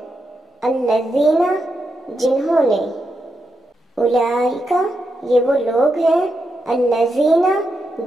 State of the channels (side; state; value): both; normal; correlation 0.85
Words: الذین جنہوں نے، اولئک یہ وہ لوگ ہیں، الذین